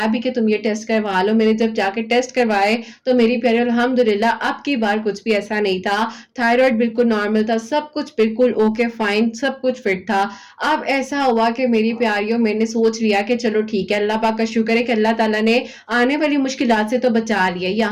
भी कि तुम ये टेस्ट करवा लो। मैंने जब जाके टेस्ट करवाए तो मेरी प्यारी अल्हम्दुलिल्लाह अब की बार कुछ भी ऐसा नहीं था, थायराइड बिल्कुल नॉर्मल था, सब कुछ बिल्कुल ओके फाइन, सब कुछ फिट था। अब ऐसा हुआ कि मेरी प्यारियों मैंने सोच लिया कि चलो ठीक है, अल्लाह पाक का शुक्र है कि अल्लाह ताला ने आने वाली मुश्किलात से तो बचा लिया,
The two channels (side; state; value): both; identical; correlation 1.00